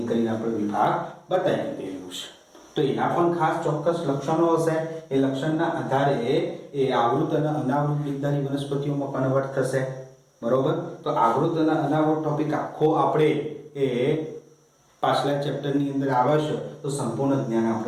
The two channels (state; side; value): identical; both; correlation 1.00